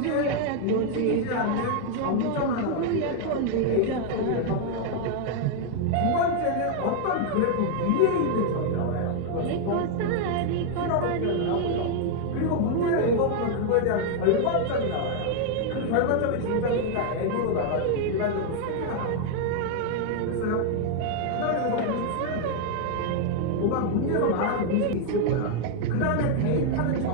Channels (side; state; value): both; different; correlation 0.00